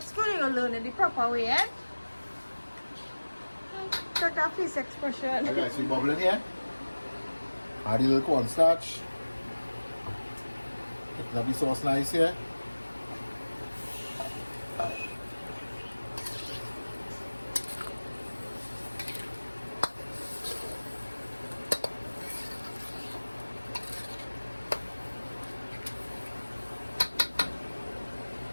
school, you'll learn it the proper way, eh? Check that face expression. Okay, so you bubbling here. Add a little cornstarch. Picking up the sauce nice here.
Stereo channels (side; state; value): both; inverted; correlation -1.00